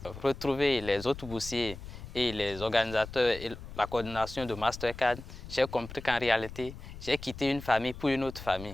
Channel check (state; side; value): noise; left; rumble, 13 dB below the sound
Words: retrouver les autres boursiers et les organisateurs et la coordination de Mastercard, j'ai compris qu'en réalité, j'ai quitté une famille pour une autre